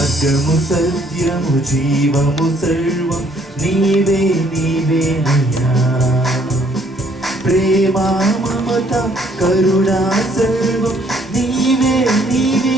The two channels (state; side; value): normal; both; correlation 0.64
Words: సత్యము జీవము సర్వం నీవే నీవేనయ్యా. ప్రేమ మమత కరుణా సర్వం నీవే